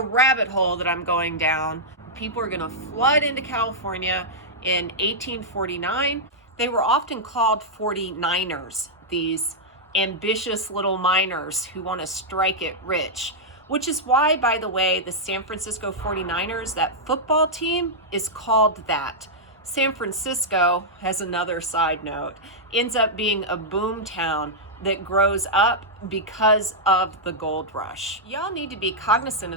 rabbit hole that I'm going down, people are going to flood into California in 1849. They were often called 49ers, these ambitious little miners who want to strike it rich, which is why, by the way, the San Francisco 49ers, that football team, is called that. San Francisco, has another side note, ends up being a boom town that grows up because of the gold rush. Y'all need to be cognizant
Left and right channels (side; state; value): both; normal; correlation -0.07